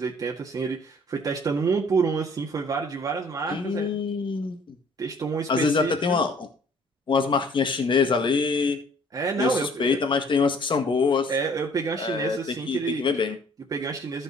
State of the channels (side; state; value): both; normal; correlation 0.56